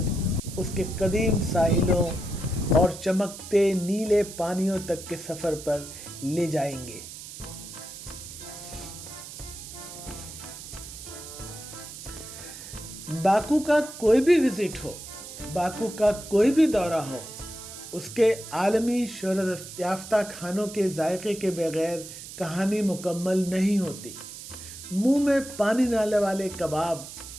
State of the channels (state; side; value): noise; right; hiss, 12 dB below the sound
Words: उसके कदीम साहिलों और चमकते नीले पानियों तक के सफ़र पर ले जाएंगे। बाकू का कोई भी विजिट हो, बाकू का कोई भी दौरा हो, उसके आलमी शोहरत याफ्ता खानों के जायके के बगैर कहानी मुकम्मल नहीं होती। मुंह में पानी डालने वाले कबाब